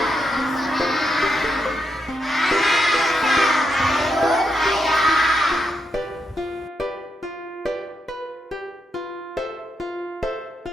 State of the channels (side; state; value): both; normal; correlation 0.82